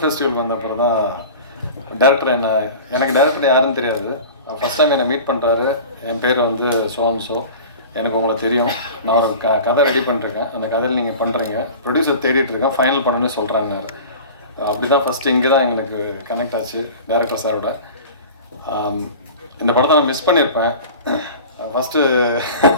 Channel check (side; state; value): both; inverted; correlation -0.37